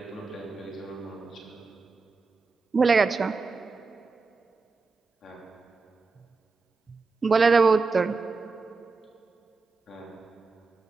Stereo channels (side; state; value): left; quieter; 4.3 dB